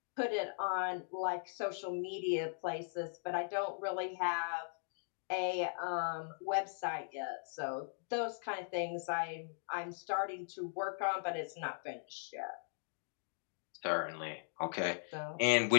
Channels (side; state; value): right; silent; digital silence